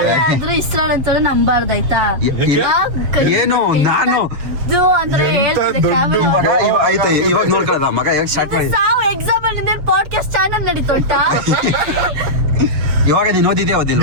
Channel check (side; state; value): left; late; 7.1 ms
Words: ಆದ್ರೂ ಇಸ್ರಾಲ್ ಅಂತ ನಂಬಾರ್ದಾಯ್ತಾ? ಏನು ನಾನು ಅಂದ್ರೆ ಆಯ್ತು ಇವಾಗ ನೋಡ್ಕೊಳ್ಳೋಣ ಮಗ ಹೇಗೆ ಸ್ಟಾರ್ಟ್ ಮಾಡಿ. ಎಕ್ಸಾಮ್ ಅಲ್ಲಿ ಪಾಡ್ಕಾಸ್ಟ್ ಚಾನಲ್ ನಡೀತೋಟ. ಇವಾಗ ನೀನು ಓದಿದ್ಯಾ ಓದಿಲ್ಲ?